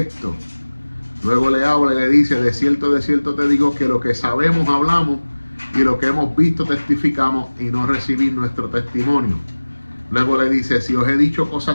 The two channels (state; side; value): inverted; both; correlation -1.00